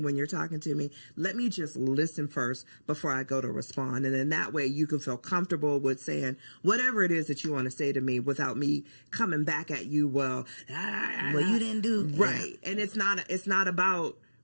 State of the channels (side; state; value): both; inverted; correlation -1.00